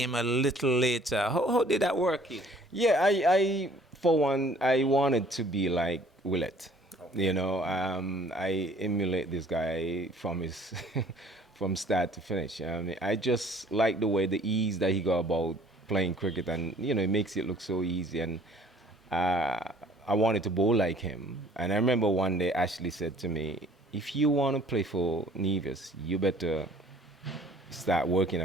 a little later. How did that work, Keith? Yeah, I for one, I wanted to be like Willett. You know, I emulate this guy from his from start to finish. I mean, I just like the way, the ease that he got about playing cricket, and you know, it makes it look so easy. And I wanted to bowl like him. And I remember one day Ashley said to me, "If you want to play for Nevis, you better start working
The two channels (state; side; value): normal; both; correlation 0.54